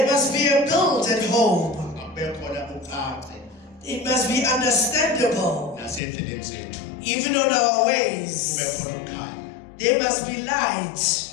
must be a build-up home. It must be understandable. Even on our ways, there must be light.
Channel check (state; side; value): drops out; right; at 6.0 s